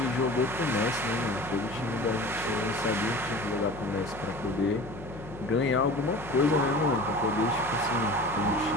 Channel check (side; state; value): left; noise; hum, 14 dB below the sound